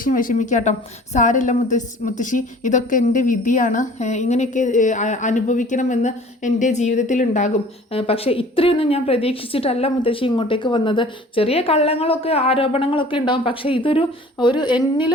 വിഷമിക്കാട്ടോ. സാരമില്ല മുത്തശ്ശി, ഇതൊക്കെ എൻ്റെ വിധിയാണ്, ഇങ്ങനെയൊക്കെ അനുഭവിക്കണമെന്ന് എൻ്റെ ജീവിതത്തിൽ ഉണ്ടാകും, പക്ഷേ ഇത്രയൊന്നും ഞാൻ പ്രതീക്ഷിച്ചിട്ടല്ല മുത്തശ്ശി ഇങ്ങോട്ടേക്ക് വന്നത്. ചെറിയ കള്ളങ്ങളൊക്കെ ആരോപണങ്ങളൊക്കെ ഉണ്ടാകും, പക്ഷേ ഇതൊരു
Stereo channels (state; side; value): normal; both; correlation 0.48